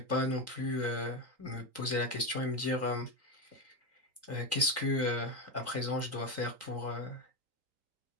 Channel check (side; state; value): left; late; 3.8 ms